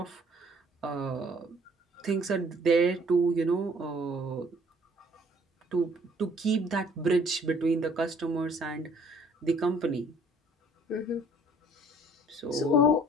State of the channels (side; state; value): both; normal; correlation 0.58